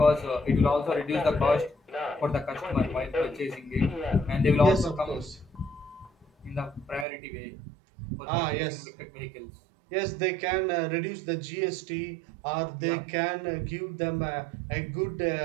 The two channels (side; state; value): left; drops out; at 7.1 s